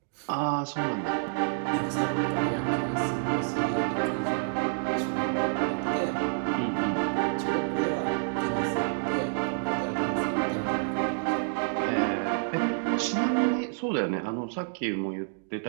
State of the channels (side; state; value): left; silent; digital silence